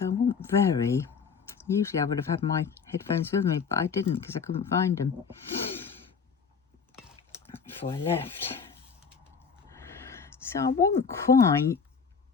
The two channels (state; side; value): quieter; right; 5.9 dB